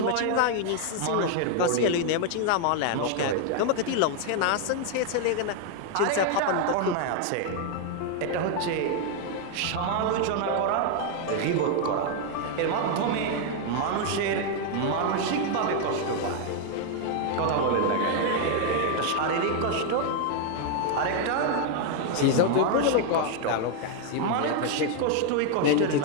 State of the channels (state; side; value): different; both; correlation 0.00